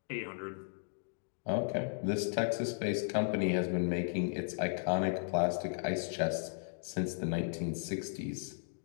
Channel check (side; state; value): right; silent; digital silence